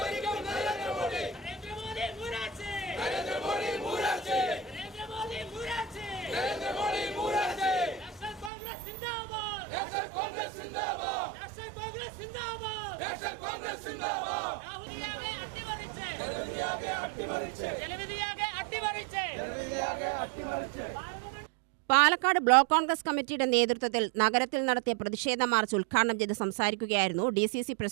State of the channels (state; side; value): drops out; left; at 8.5 s